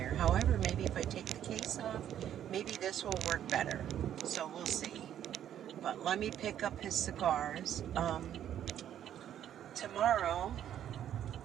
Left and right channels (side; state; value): left; quieter; 10.5 dB